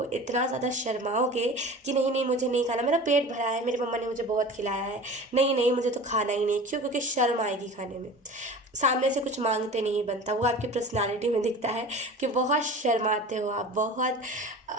इतना ज़्यादा शर्माओगे कि नहीं नहीं मुझे नहीं खाना, मेरा पेट भरा है, मेरी मम्मा ने मुझे बहुत खिलाया है, नहीं नहीं मुझे तो खाना ही नहीं। क्यों? क्योंकि शर्म आएगी खाने में, सामने से कुछ मांगते नहीं बनता। वो आपकी पर्सनालिटी में दिखता है कि बहुत शर्माते हो आप, बहुत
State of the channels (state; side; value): normal; both; correlation 0.37